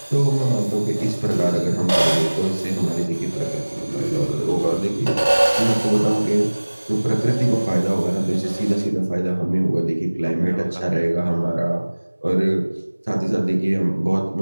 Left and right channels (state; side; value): inverted; both; correlation -1.00